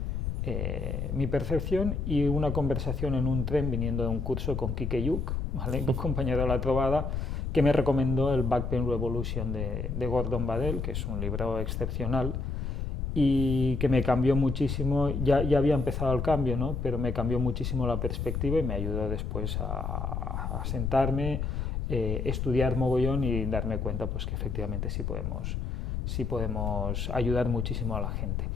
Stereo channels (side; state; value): left; noise; rumble, 2 dB below the sound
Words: mi percepción, y una conversación en un tren viniendo de un curso con Kike Yuk, ¿vale? Un compañero de la trovada, que me recomendó el Back Pain Revolution de Gordon Badel, que es un libro excepcional y que me cambió muchísimo. Ya había empezado el cambio, ¿no? Pero me cambió muchísimo la perspectiva y me ayudó después a sentarme, estudiar mogollón y darme cuenta pues, que efectivamente sí podemos ayudar muchísimo a la gente.